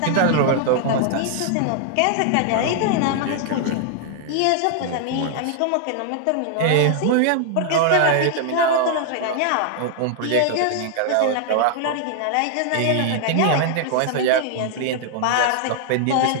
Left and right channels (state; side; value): different; both; correlation 0.00